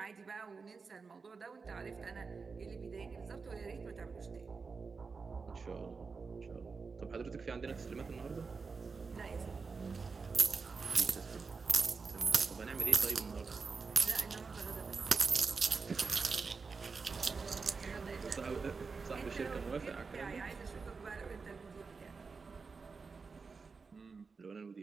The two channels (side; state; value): left; quieter; 4.8 dB